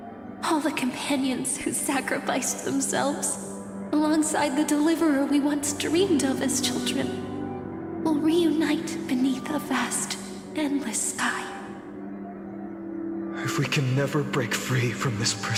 all the companions who sacrificed themselves, alongside the deliverer we once dreamed of as children, will reunite beneath a vast, endless sky. If we can never break free from this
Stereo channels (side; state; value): both; identical; correlation 1.00